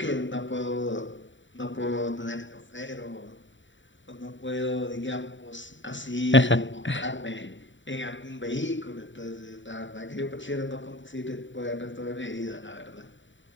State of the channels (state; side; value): late; right; 0.55 ms